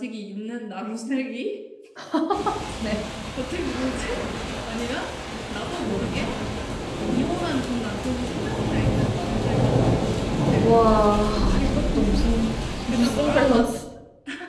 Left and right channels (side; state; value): both; identical; correlation 1.00